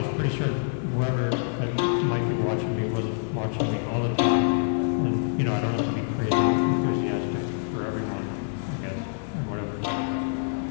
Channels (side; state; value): right; silent; 56 dB below the other